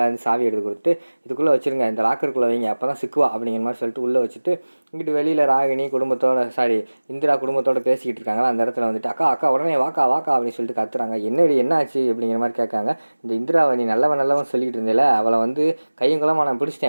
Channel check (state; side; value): inverted; both; correlation -1.00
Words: வந்து சாவி எடுத்து கொடுத்து, இதுக்குள்ளே வச்சுருங்க, இந்த லாக்கருக்குள்ளே வைங்க, அப்போ தான் சிக்குவா அப்படிங்கிற மாதிரி சொல்லிட்டு உள்ளே வச்சுட்டு, இங்கிட்டு வெளியில் ராகினி இந்திரா குடும்பத்தோடு பேசிக்கிட்டு இருக்காங்களா, அந்த இடத்துல வந்துட்டு அக்கா உடனே வாக்கா அப்படின்னு சொல்லிட்டு கத்துறாங்க. என்னடி என்ன ஆச்சு அப்படிங்கிற மாதிரி கேட்காங்க. இந்த இந்திராவை நீ நல்லவன் சொல்லிக்கிட்டு இருந்தேல, அவளை வந்து கையும் குளமாக நான்